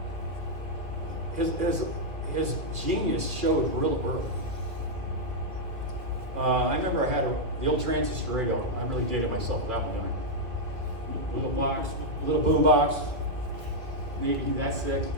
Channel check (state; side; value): late; left; 1.9 ms